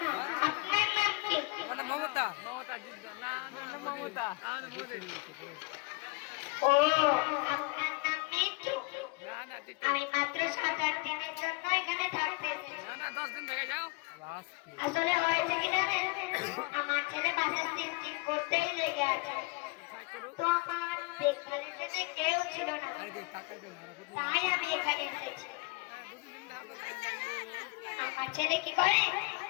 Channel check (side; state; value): right; quieter; 27.0 dB